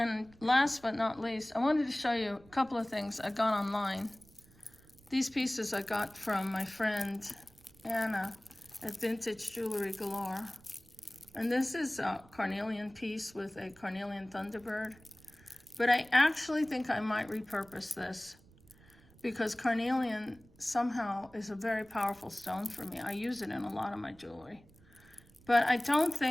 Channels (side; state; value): right; noise; rumble, 26 dB below the sound